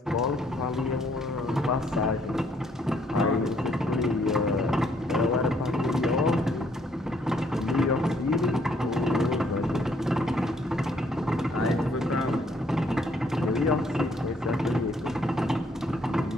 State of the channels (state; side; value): normal; both; correlation 0.67